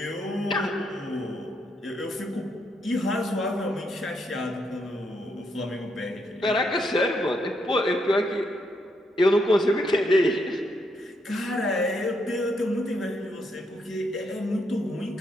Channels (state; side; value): normal; both; correlation 0.77